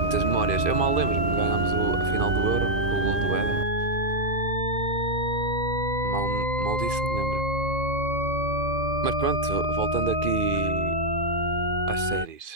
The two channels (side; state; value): left; late; 2.5 ms